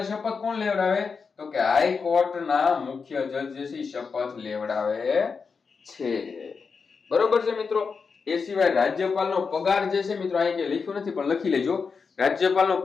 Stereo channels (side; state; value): right; quieter; 5.3 dB